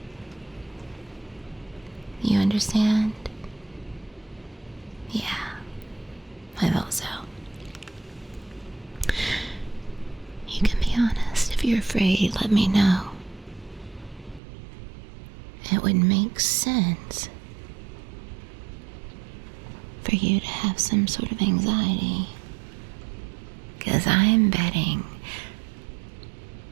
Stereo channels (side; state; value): left; drops out; at 14.4 s